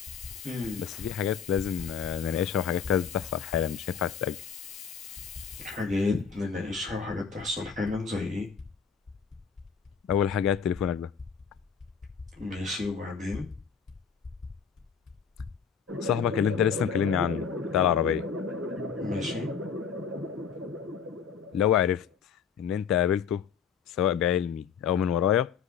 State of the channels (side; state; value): right; quieter; 7.0 dB